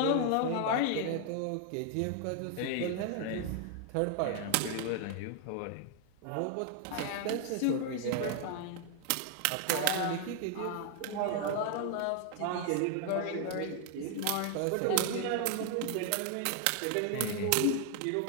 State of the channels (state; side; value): different; both; correlation 0.00